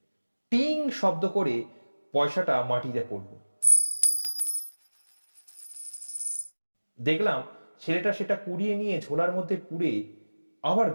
টিং শব্দ করে পয়সাটা মাটিতে পড়ল। দেখলাম ছেলেটা সেটা কুড়িয়ে নিয়ে ঝোলার মধ্যে পুরে আবার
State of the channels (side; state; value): both; inverted; correlation -1.00